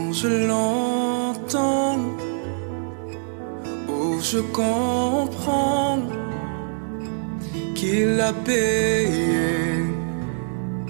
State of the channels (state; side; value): silent; left; digital silence